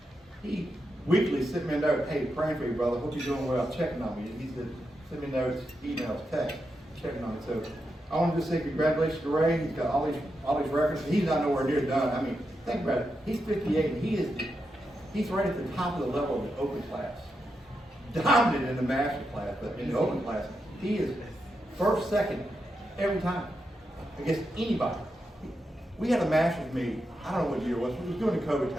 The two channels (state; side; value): normal; both; correlation 0.86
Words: He weekly sent me a note, hey, praying for you, brother. Hope you're doing well. Checking on me. He said, send me notes, emails, text, checking on me. So I wanted to say congratulations to Ray. He's got all these records. He's not nowhere near done. I mean, think about it. He's 58 and he's right at the top of the level of the open class. Dominant in the master class, but in the open class, he is first, second, every time against anybody. We had a master's meet, I don't know what year it was during the COVID